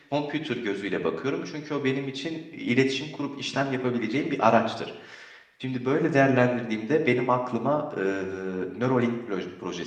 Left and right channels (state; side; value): identical; both; correlation 1.00